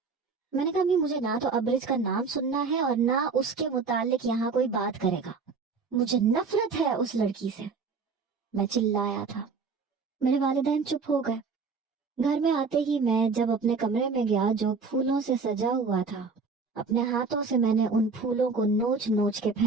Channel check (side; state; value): left; quieter; 4.7 dB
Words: میں نے کہا امی مجھے نہ تو ابرج کا نام سننا ہے اور نہ اس کے متعلق یہاں کوئی بات کرے گا، مجھے نفرت ہے اس لڑکی سے۔ میں چلایا تھا۔ میرے والدین چپ ہو گئے۔ گھر میں آتے ہی میں جب اپنے کمرے میں گیا جو پھولوں سے سجا ہوا تھا، اپنے ہاتھوں سے میں نے ان پھولوں کو نوچ نوچ کے